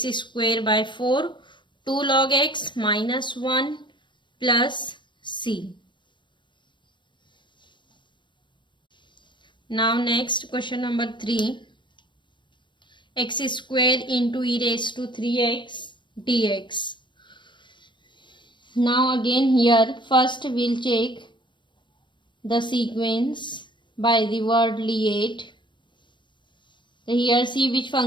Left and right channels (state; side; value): late; right; 0.23 ms